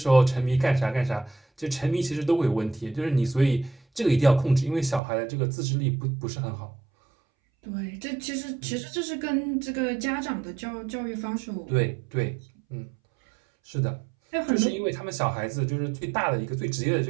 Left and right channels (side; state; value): left; drops out; at 5.0 s